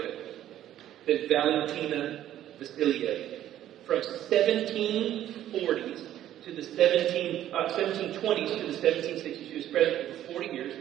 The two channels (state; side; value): quieter; left; 12.2 dB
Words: it, than Valentina Vassilieva. From 1740s to the 1720s to the 1760s, she was pregnant for 40 years,